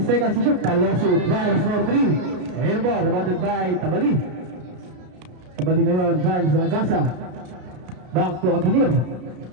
seconds to shoot. Taloso, fires for 3. Airball, rebounded by Tabali. Tabali ngayon, finds Agasa. Back to Aguinir.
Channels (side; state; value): left; late; 33 ms